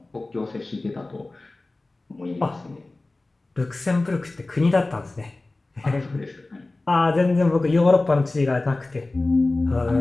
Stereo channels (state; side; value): quieter; right; 3.1 dB